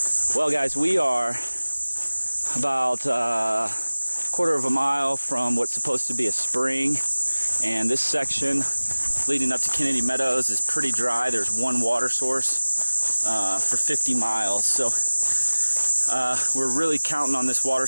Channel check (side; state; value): both; inverted; correlation -1.00